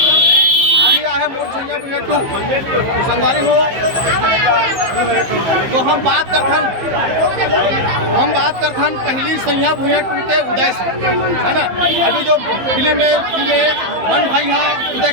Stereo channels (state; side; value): late; left; 15 ms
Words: अभी आया है मोर छैया भुइया 2 संगवारी हो। तो हम बात करथन पहली सैया भुइया 2 के उदय से है ना। अभी जो फिल्म में वन भाई यहाँ उदय